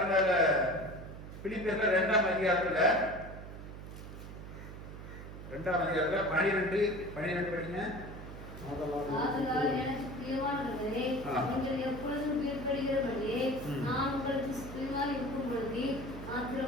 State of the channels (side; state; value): right; noise; hum, 11 dB below the sound